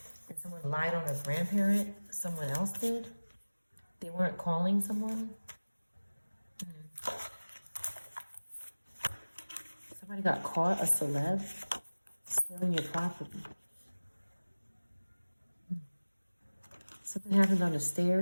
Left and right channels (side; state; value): both; inverted; correlation -1.00